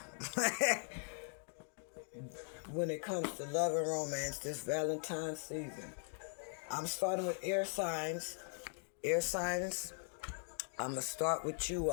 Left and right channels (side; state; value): right; silent; 51 dB below the other